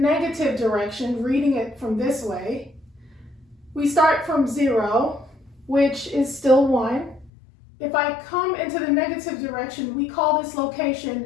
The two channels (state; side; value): drops out; right; at 7.3 s